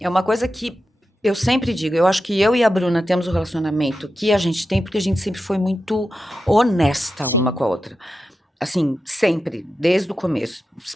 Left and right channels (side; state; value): both; normal; correlation 0.90